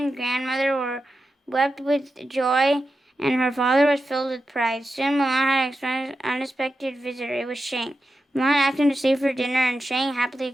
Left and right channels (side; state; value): both; normal; correlation 0.89